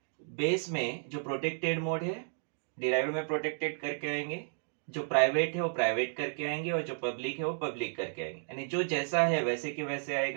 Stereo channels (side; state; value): left; silent; digital silence